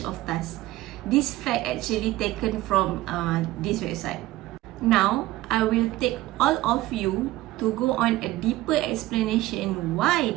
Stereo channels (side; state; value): left; quieter; 17.0 dB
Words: of tasks. This fact actually taken from this website. Now, I will take all of you to go on a deeper explanation why